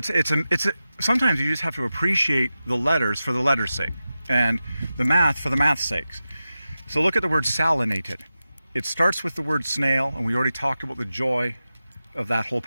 sometimes you just have to appreciate the letters for the letters' sake, and the math for the math's sakes. So look at the word salinated. It starts with the word snail, and we already talked about the joy of that whole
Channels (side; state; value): both; inverted; correlation -0.93